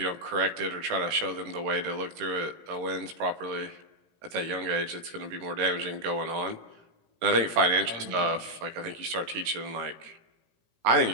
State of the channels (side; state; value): left; late; 18 ms